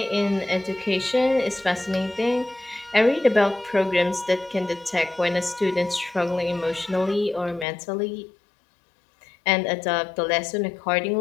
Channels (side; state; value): right; drops out; at 7.7 s